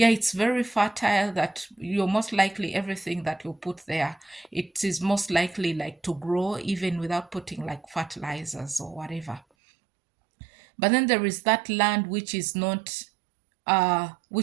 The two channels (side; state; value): left; drops out; at 9.4 s